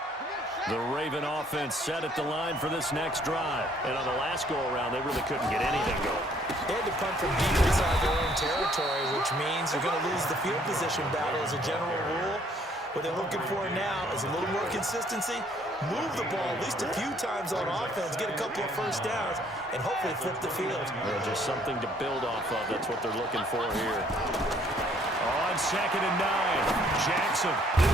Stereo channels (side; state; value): both; normal; correlation 0.63